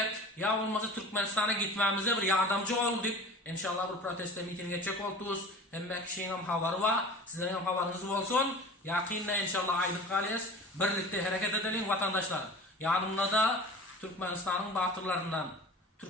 Ya olmazsa Türkmenistan'a gitmemize bir yardımcı ol deyip inşallah bir protesto miting geçecek oluruz. Hem kişinin hem havarı var, sizlerin hem havarınız olsun. Yakında inşallah aylık kalıyız. Birlikte hareket edelim vatandaşlar. Yanımda da Türkmenistan'ın batırlarından,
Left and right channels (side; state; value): both; normal; correlation 0.38